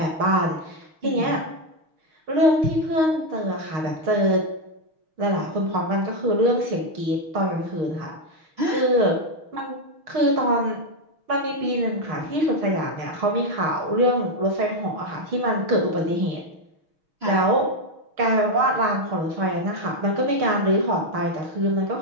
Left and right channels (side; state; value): left; late; 6.5 ms